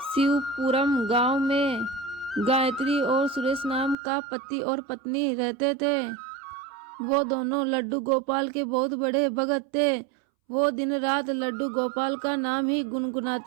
शिवपुरम गांव में गायत्री और सुरेश नाम का पति और पत्नी रहते थे। वो दोनों लड्डू गोपाल के बहुत बड़े भगत थे। वो दिन रात लड्डू गोपाल का नाम ही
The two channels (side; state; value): left; drops out; at 4.0 s